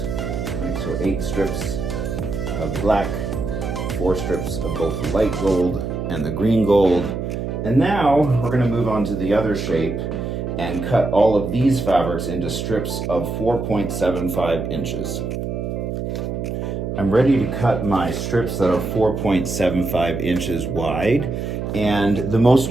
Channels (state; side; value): noise; right; hum, 4 dB below the sound